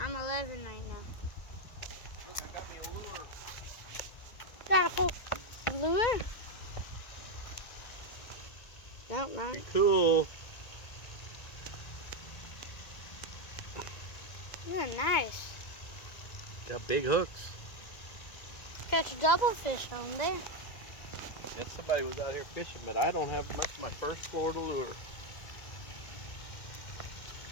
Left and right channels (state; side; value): late; right; 1.9 ms